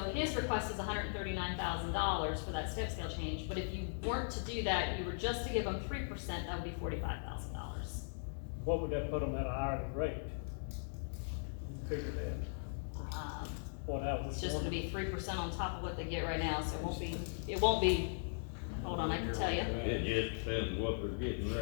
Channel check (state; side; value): silent; right; digital silence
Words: his request is $139,000 for that step scale change, but if you weren't to do that, you were just to give them 3%, that would be $45,000. What would that put them at a hourly rate? Figure that, what I was. It's just gonna be 3% on top of what they get right now, so it won't be, hold on, I can tell you. It just depends what they're getting